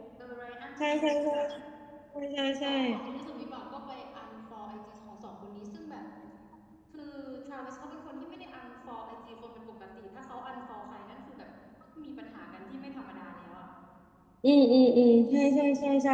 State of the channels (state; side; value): identical; both; correlation 1.00